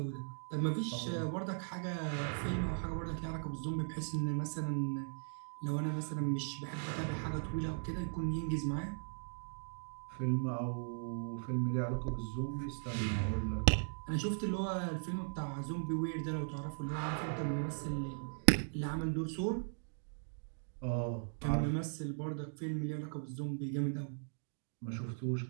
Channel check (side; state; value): left; silent; digital silence